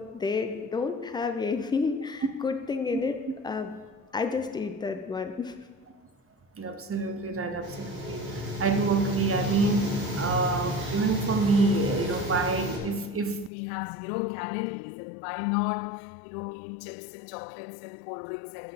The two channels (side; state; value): right; drops out; at 13.5 s